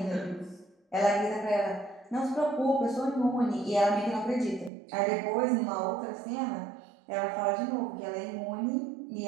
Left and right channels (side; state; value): left; drops out; at 4.7 s